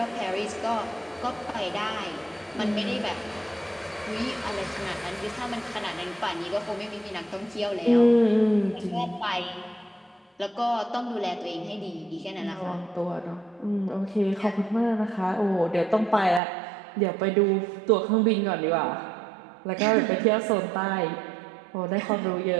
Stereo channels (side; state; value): left; drops out; at 16.4 s